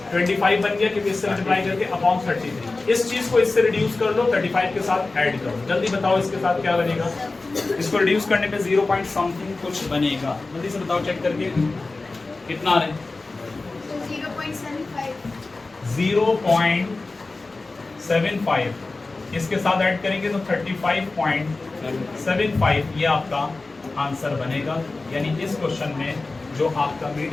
25 बन गया क्योंकि इससे मल्टीप्लाई करके अपॉन 33। इस चीज को इससे रिड्यूस कर लो, 35 के साथ ऐड करो। जल्दी बताओ इसके साथ क्या बनेगा? इसको रिड्यूस करने पे 0 पॉइंट समथिंग कुछ बनेगा। जल्दी से बताओ चेक करके कितना आ रहा है? 0.75। इसके साथ ऐड करेंगे तो 35.75 ये आपका आंसर बनेगा। यानी इस क्वेश्चन में जो आपका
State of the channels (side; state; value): right; quieter; 3.5 dB